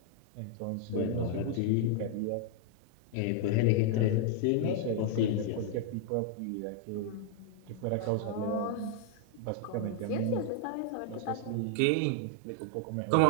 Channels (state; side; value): different; both; correlation 0.00